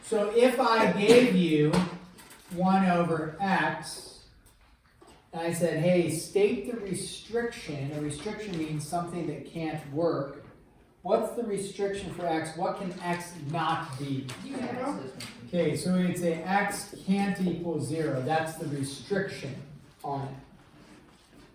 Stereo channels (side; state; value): both; identical; correlation 1.00